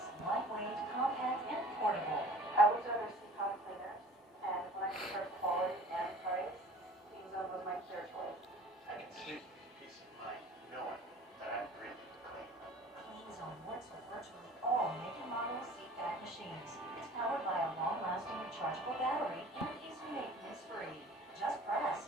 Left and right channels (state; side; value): normal; both; correlation 0.46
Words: lightweight, compact, and portable. I was under CPAP cleaner, and when I compared quality and price, Clean Zone was my clear choice. I can sleep with peace of mind knowing that I'm breathing clean. Clean Zone works with virtually all make and model CPAP machines. It's powered by a long-lasting rechargeable battery and is maintenance-free. Just press,